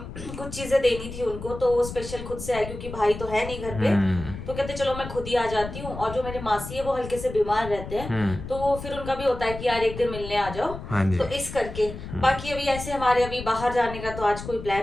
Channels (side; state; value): left; noise; rumble, 10 dB below the sound